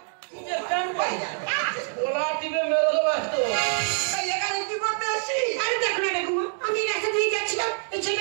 জিন্সের প্যান্ট পাই ওলা টিপে মেরে দেবো এত। এখানে কি করতে আসছিস? আরে দেখো না ঠাকুমা আমি রাস্তা দিয়ে যাচ্ছিলাম এই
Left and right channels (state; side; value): silent; left; digital silence